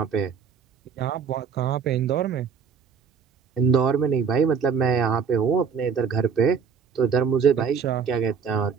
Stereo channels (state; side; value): quieter; left; 6.3 dB